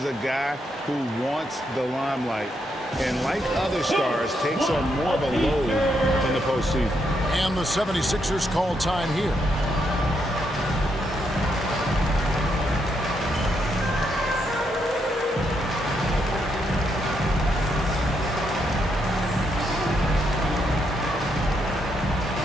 a guy who wants the limelight. And like other stars, takes on more of a load in the postseason. And the 76ers call time here.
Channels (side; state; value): both; normal; correlation 0.78